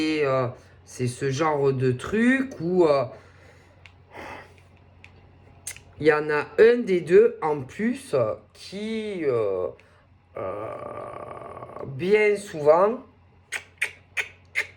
c'est ce genre de truc où il y en a un des deux en plus qui, bien souvent,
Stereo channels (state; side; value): identical; both; correlation 1.00